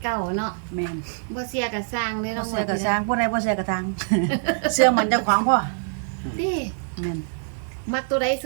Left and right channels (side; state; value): left; silent; digital silence